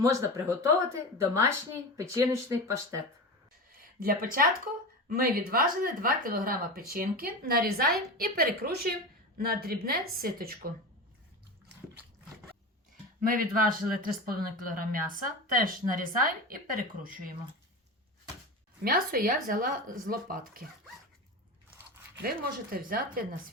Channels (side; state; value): both; normal; correlation 0.26